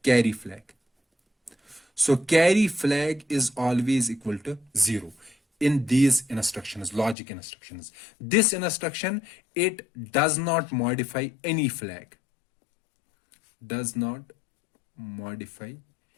carry flag. So carry flag is always equal to 0 in these instructions, logic instructions. This instruction, it does not modify any flag, does not modify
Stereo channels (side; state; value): right; drops out; at 7.2 s